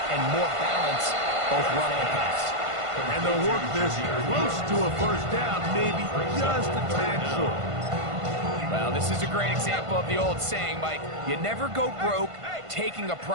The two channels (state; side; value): late; left; 1.5 ms